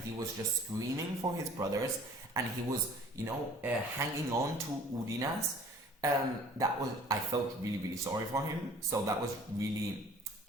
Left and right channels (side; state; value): both; normal; correlation 0.50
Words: he was just screaming for his brothers. And he was, you know, hanging on to Udinas. I felt really, really sorry for him. So that was really